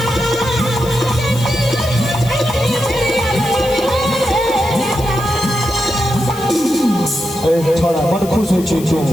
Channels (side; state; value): left; noise; hiss, 15 dB below the sound